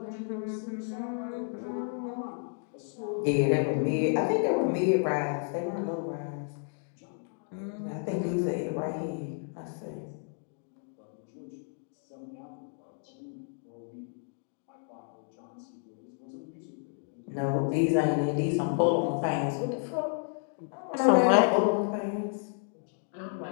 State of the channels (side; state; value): right; silent; 56 dB below the other